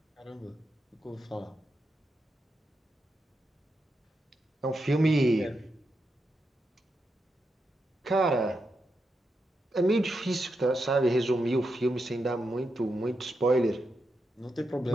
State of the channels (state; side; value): normal; both; correlation 0.85